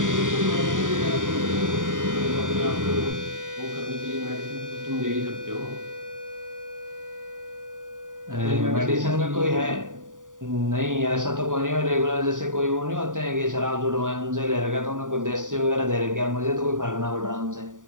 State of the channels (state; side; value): late; left; 0.88 ms